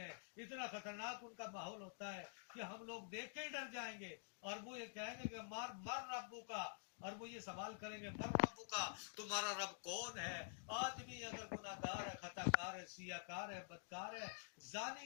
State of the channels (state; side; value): silent; right; digital silence